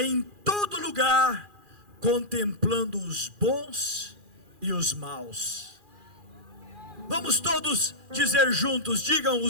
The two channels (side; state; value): left; late; 2.4 ms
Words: todo lugar, contemplando os bons e os maus. Vamos todos dizer juntos, digam: